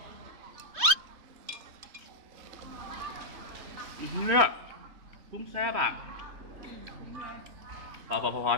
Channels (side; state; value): left; late; 3.2 ms